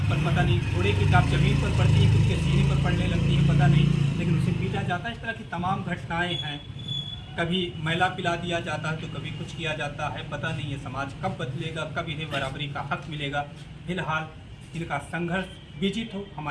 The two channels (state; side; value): identical; both; correlation 1.00